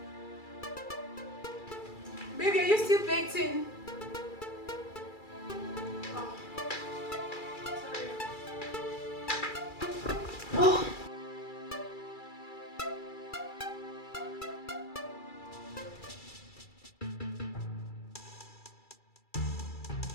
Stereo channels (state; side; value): late; right; 2.3 ms